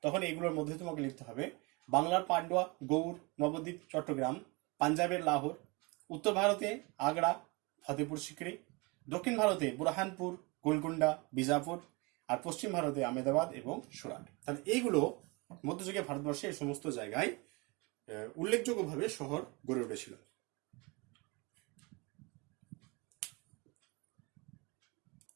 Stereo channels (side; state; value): left; quieter; 27.5 dB